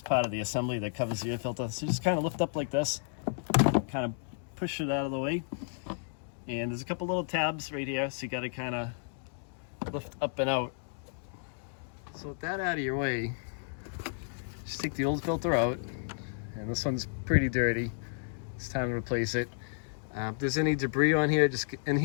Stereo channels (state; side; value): silent; right; digital silence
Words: part of the assembly that covers the air filter. So just kind of lift up like this, kind of push it out of the way, and there's a couple little tabs right here, so you got to kind of lift up and out. So with that out of your way, just take the old filter out, and this one's pretty dirty. It's time to replace it. If there's any debris on here, just